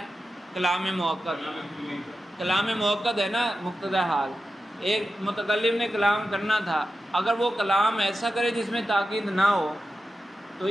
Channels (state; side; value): normal; both; correlation 0.92